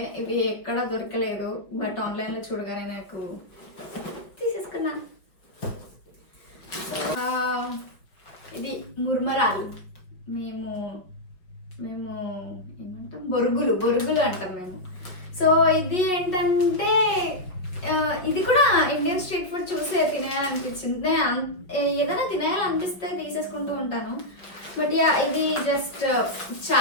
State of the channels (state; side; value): late; right; 5.2 ms